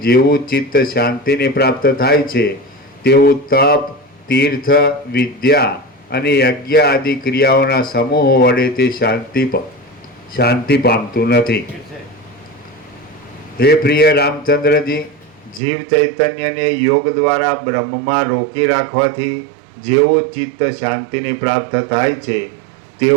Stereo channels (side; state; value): left; drops out; at 15.6 s